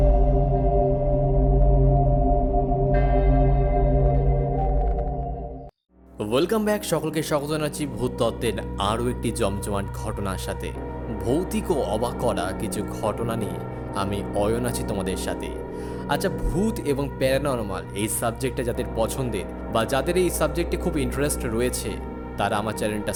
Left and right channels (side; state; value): both; identical; correlation 1.00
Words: Welcome back. সকলকে স্বাগত জানাচ্ছি ভূত তত্ত্বের আরও একটি জমজমাট ঘটনার সাথে। ভৌতিক ও অবাক করা কিছু ঘটনা নিয়ে আমি অয়ন আছি তোমাদের সাথে। আচ্ছা, ভূত এবং প্যারানরমাল এই সাবজেক্টটা যাদের পছন্দের বা যাদের এই সাবজেক্টে খুব ইন্টারেস্ট রয়েছে, তারা আমার চ্যানেলটা